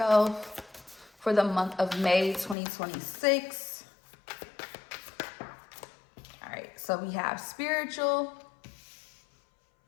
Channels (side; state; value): right; drops out; at 2.6 s